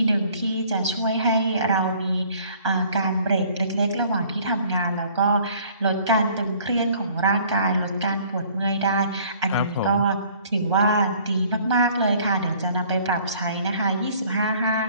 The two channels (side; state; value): both; inverted; correlation -0.56